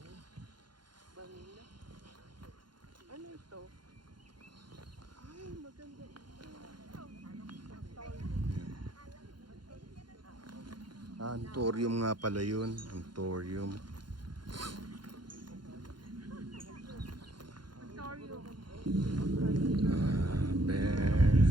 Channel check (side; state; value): left; late; 0.71 ms